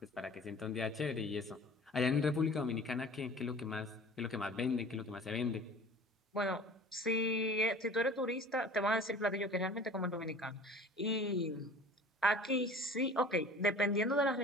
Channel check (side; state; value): both; normal; correlation 0.44